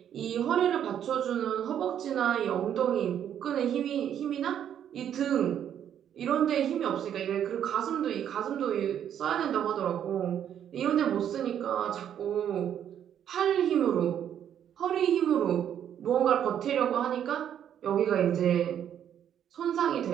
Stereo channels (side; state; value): left; quieter; 9.6 dB